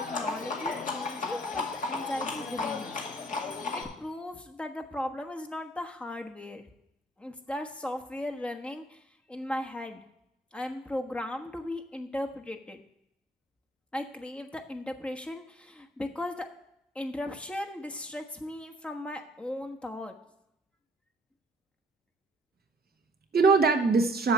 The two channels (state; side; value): normal; both; correlation 0.59